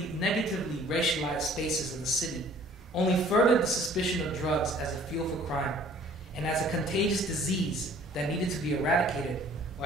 racialized spaces of the city only furthered the suspicion of drugs as a fuel for crime and as a contagious disease that needed to be eradicated or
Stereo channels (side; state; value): both; normal; correlation 0.54